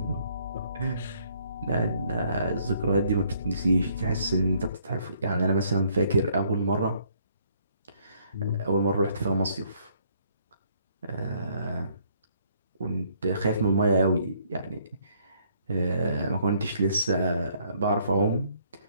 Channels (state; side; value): inverted; both; correlation -0.66